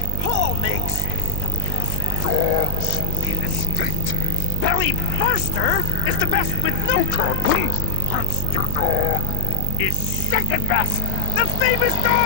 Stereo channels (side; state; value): both; different; correlation 0.00